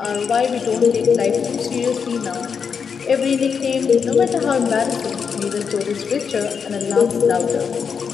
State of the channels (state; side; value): quieter; right; 6.3 dB